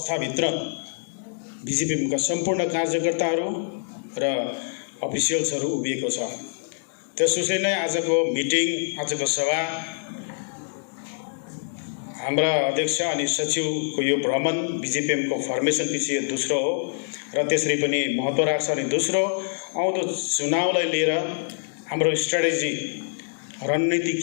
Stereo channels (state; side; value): silent; right; digital silence